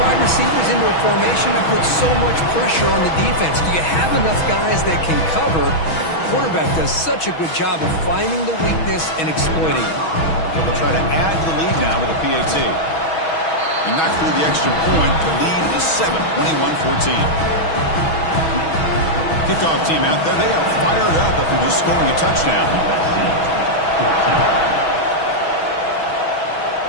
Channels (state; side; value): late; right; 6.2 ms